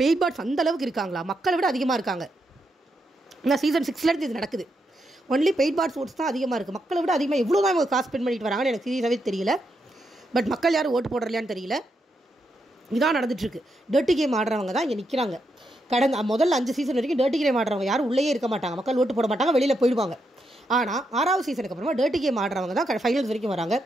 பெய்ட் பாட்ஸ் அந்தளவுக்கு இருக்காங்களா? மக்களை விட அதிகமாக இருக்காங்க. ஏன்னா சீசன் 6 இது நடக்குது. ஒன்லி பெய்ட் பாட்ஸ் ஓட்ஸ் தான் அதிகமாக இருக்குது. மக்களை விட அதிகமாக எவ்வளோ தான் இவங்க காசு ஸ்பெண்ட் பண்ணிட்டு வராங்கன்னு எனக்கு சீரியஸாகவே தெரியல. பட் மக்கள் யாரும் ஓட்டு போடுறலையான்னு தெரியல. இதான் நடந்துட்டுருக்கு. டர்ட்டி கேம் ஆடுறவங்க தான் இங்கே நிற்கிறாங்க. கடந்த முதல்ல 5 சீசன் வரைக்கும் டர்ட்டி கேம் ஆடுறவங்க யாரும் உள்ளே இருக்க மாட்டாங்க, மக்கள் ஓட்டு போட மாட்டாங்க, வெளியில் போயிடுவாங்க. ஆனால் 6வது சீசனுக்கு அப்புறமா டர்ட்டி கேம் ஆடுறவங்க தான் ஃபைனல்ஸ் வரைக்கும் வராங்க.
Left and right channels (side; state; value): both; normal; correlation 0.82